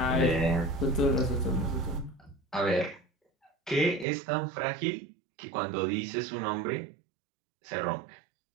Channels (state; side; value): drops out; left; at 4.0 s